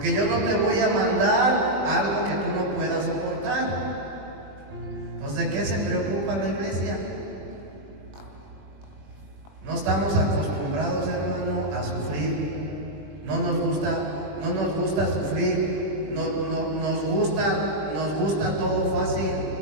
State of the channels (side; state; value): left; late; 20 ms